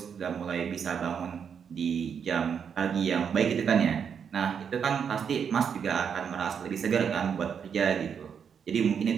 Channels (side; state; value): left; quieter; 7.2 dB